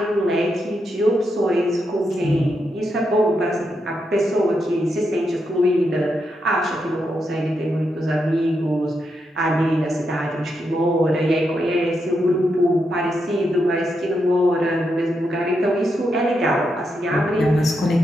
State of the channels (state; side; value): normal; both; correlation 0.83